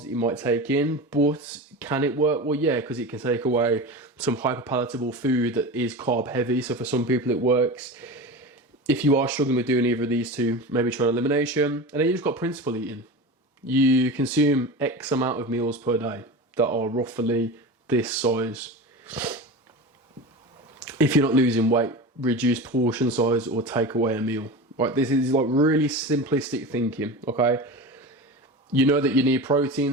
that you might take in, but can it work? Well, yeah, because it can take away some hyperpalatable food that is carb heavy. So for some people it works. If you are struggling with doing either of these two, maybe try an elimination. And then you just got principle eating. You consume X amount of meals per day that are roughly this size. If you're not losing weight, reduce portion size or take away a meal. Right, this is like really simplistic thinking, okay? You know that you need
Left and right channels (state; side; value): normal; both; correlation 0.28